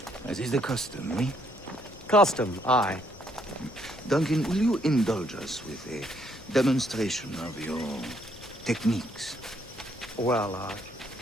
as is the custom, eh? Custom, aye. Duncan, will you indulge us with a demonstration of your techniques? Well,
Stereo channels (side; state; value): left; noise; rumble, 22 dB below the sound